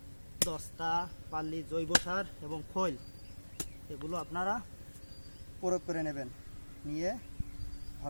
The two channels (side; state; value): both; inverted; correlation -1.00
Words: দস্তা, পাল্লি, জৈব সার এবং খৈল এগুলো আপনারা প্রয়োগ করে নেবেন। নিয়ে